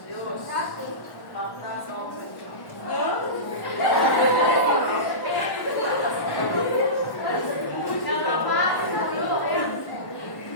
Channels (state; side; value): late; right; 1.1 ms